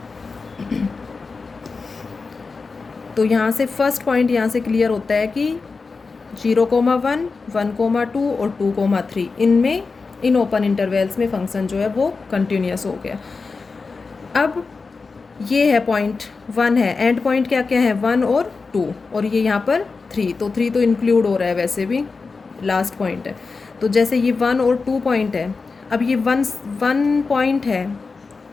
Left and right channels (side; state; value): right; quieter; 4.4 dB